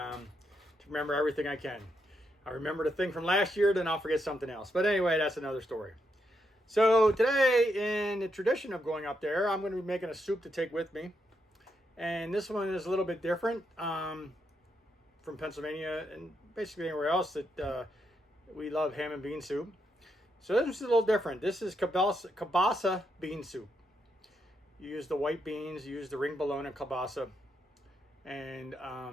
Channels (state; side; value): normal; both; correlation 0.80